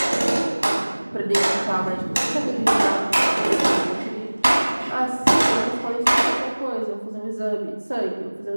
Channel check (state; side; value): inverted; both; correlation -1.00